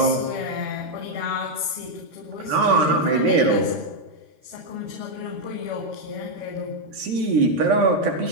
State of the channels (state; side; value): late; left; 13 ms